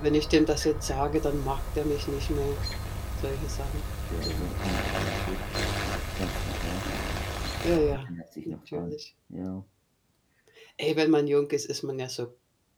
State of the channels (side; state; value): both; identical; correlation 1.00